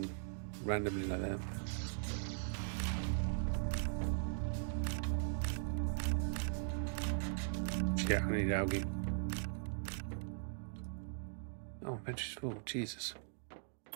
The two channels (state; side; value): silent; left; digital silence